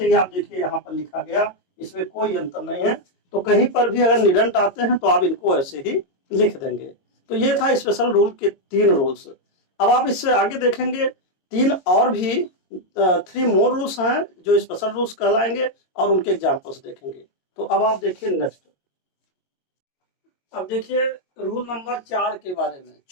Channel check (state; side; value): late; right; 22 ms